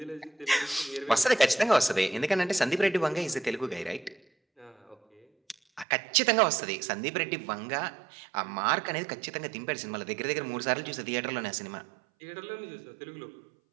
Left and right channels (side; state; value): left; drops out; at 5.9 s